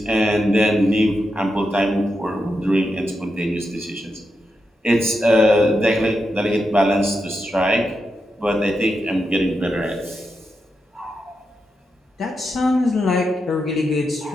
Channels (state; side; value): normal; both; correlation 0.86